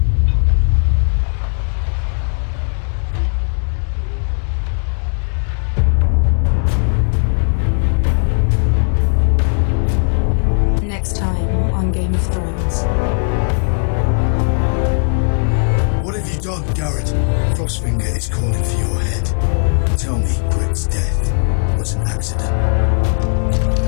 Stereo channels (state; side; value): silent; right; digital silence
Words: Next time on on Game of Thrones. What have you done, Gared? Frostfinger is calling for your head. Tell me Britt's death was an accident.